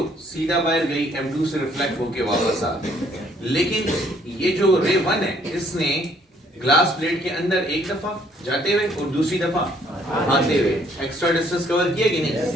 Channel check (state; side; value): normal; both; correlation 0.64